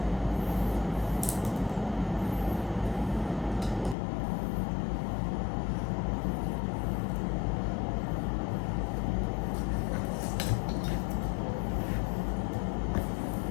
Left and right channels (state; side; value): drops out; right; at 4.0 s